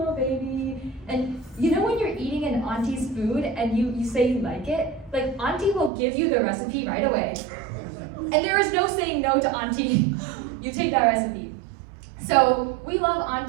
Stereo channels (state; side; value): drops out; left; at 5.9 s